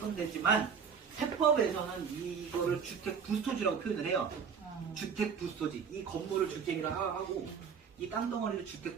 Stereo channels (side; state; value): left; quieter; 6.5 dB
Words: 데지만 세법에서는 이거를 주택 부스토지라고 표현을 해요. 주택 부스토지. 이 건물을 주택이라고 하고 이 땅덩어리를 주택